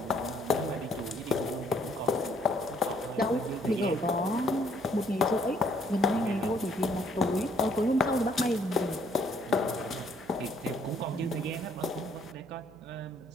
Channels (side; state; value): right; noise; hum, 23 dB below the sound